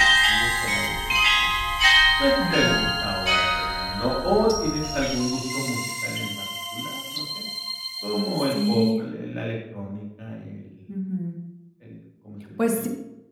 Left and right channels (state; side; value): identical; both; correlation 1.00